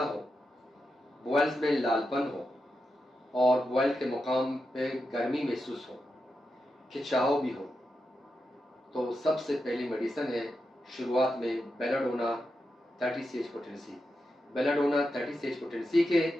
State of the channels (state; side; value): normal; both; correlation 0.88